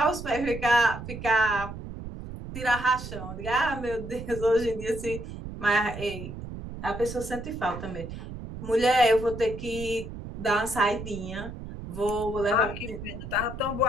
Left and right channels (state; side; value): noise; right; rumble, 10 dB below the sound